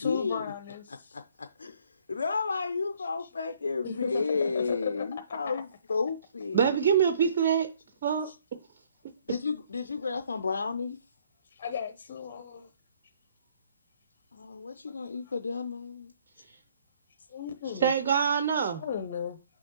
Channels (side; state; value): both; inverted; correlation -0.63